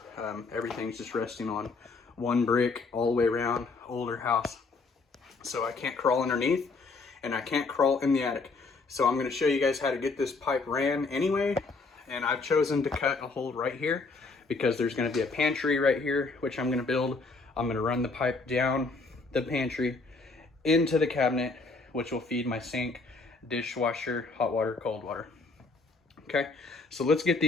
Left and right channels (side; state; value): right; quieter; 3.9 dB